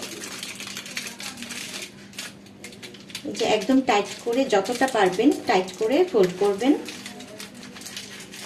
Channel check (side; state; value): both; identical; correlation 1.00